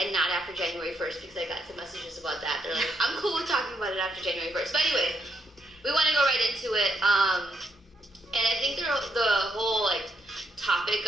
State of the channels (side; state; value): both; normal; correlation 0.77